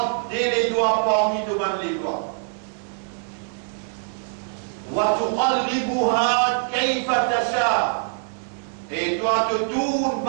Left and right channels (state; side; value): silent; left; digital silence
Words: les doigts parmi devant les doigts. وتقلبها كيف تشاء, et toi te tournes